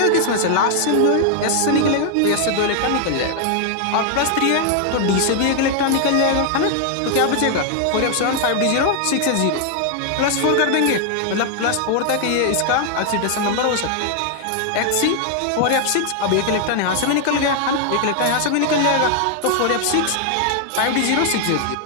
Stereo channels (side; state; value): both; different; correlation 0.00